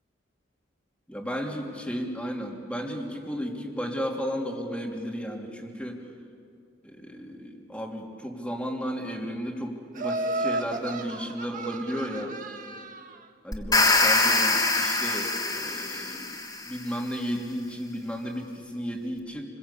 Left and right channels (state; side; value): normal; both; correlation 0.23